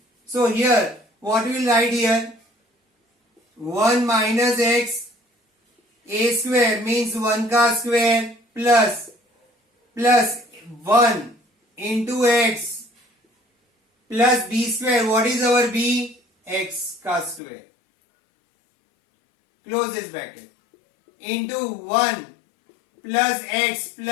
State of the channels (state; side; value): drops out; right; at 17.4 s